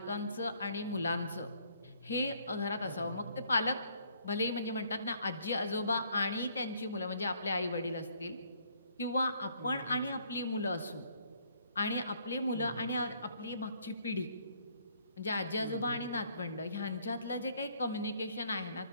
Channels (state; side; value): inverted; both; correlation -0.65